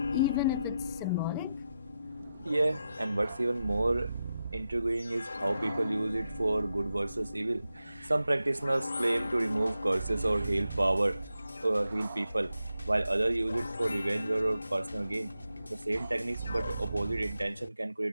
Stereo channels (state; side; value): inverted; both; correlation -0.88